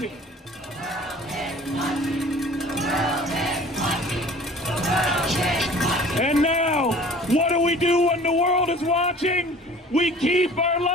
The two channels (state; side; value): normal; both; correlation 0.47